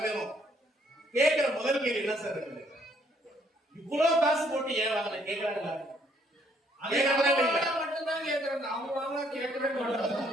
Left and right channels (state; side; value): normal; both; correlation 0.67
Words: கேட்கிற முதல் கேள்வி என்ன சார் இருக்குது? இவ்வளவு காசு போட்டு ஏன் வாங்கின கேட்கறாங்களா?